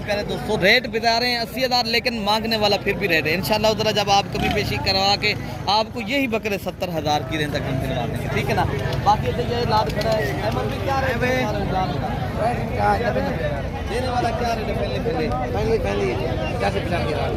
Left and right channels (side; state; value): both; identical; correlation 1.00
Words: प्यारे दोस्तों रेट बता रहे हैं 80,000, लेकिन मांगने वाला फिर भी रेट है। इंशाल्लाह उधर जब आप कमी पेशी करवा के आपको यही बकरे 70,000 की रेंज तक हम दिलवा देंगे, ठीक है ना। बाकी तो ये लाट खड़ा है अहमद भी क्या रेट देने वाला क्या रेट है? पहले